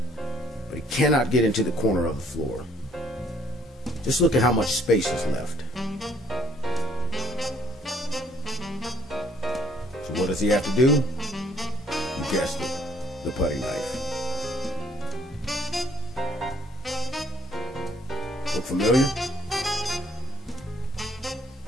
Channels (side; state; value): both; normal; correlation 0.64